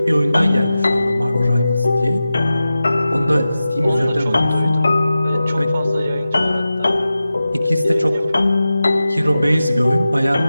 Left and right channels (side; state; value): both; inverted; correlation -0.94